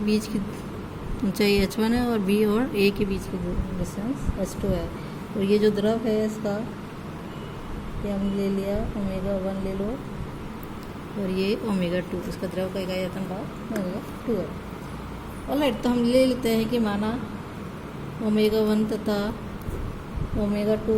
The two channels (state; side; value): identical; both; correlation 1.00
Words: बीच की ऊंचाई h1 है और B और A के बीच की डिस्टेंस h2 है। और ये जो द्रव है इसका ये हमने ले लिया ω1 ले लो और ये ω2, इसका द्रव का इकाई आयतन भाग ω2 है। ऑलराइट, तो हम ले लेते हैं कि माना ω1 तथा ω2